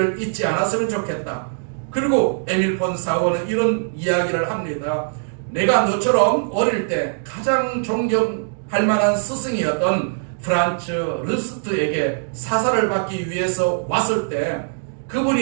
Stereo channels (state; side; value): silent; left; digital silence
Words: 잊지 않았으면 좋겠다. 그리고 에밀 폰 사우어는 이런 이야기를 합니다. 내가 너처럼 어릴 때 가장 존경할 만한 스승이었던 프란츠 르스트에게 사사를 받기 위해서 왔을 때